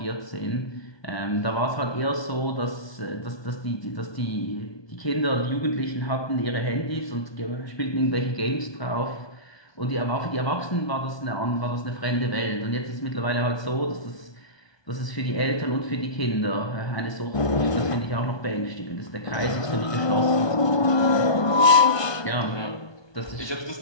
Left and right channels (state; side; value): late; right; 1.2 ms